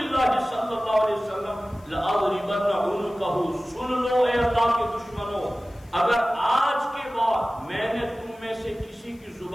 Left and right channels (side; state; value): left; noise; hiss, 30 dB below the sound